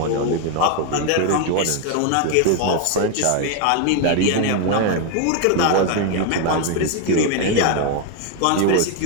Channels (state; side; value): different; both; correlation 0.01